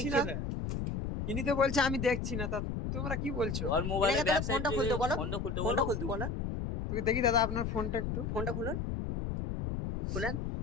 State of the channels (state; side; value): noise; left; rumble, 3 dB below the sound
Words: না, ইনি তো বলছে আমি দেখছি না, তা তোমরা কি বলছো? ওর মোবাইলে এনাকে তাহলে ফোনটা খুলতে বলো, ফোনটা খুলতে ফোনটা বলো। খুলতে বলো, ওকে দেখি দাদা আপনার ফোনটা একটু। ফোনটা খুলুন, খুলেন,